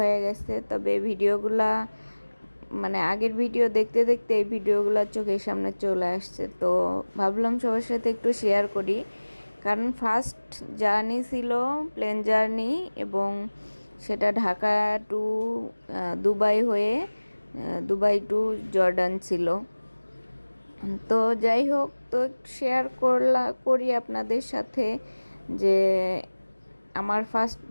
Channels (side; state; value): both; inverted; correlation -1.00